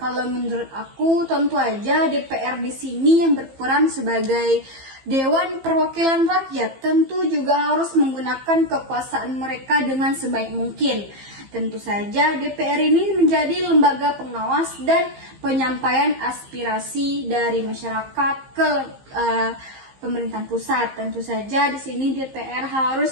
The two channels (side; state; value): left; late; 15 ms